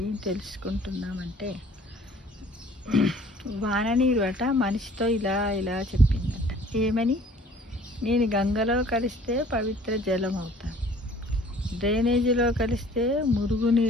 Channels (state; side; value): normal; both; correlation 0.52